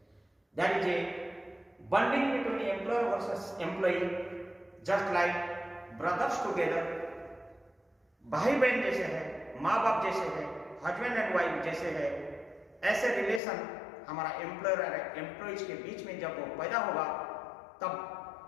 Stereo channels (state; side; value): drops out; right; at 13.4 s